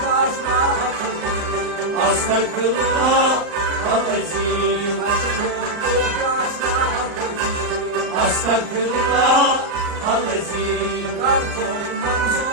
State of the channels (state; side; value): late; left; 39 ms